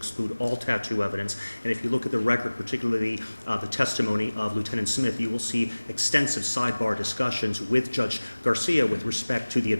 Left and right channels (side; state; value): both; inverted; correlation -1.00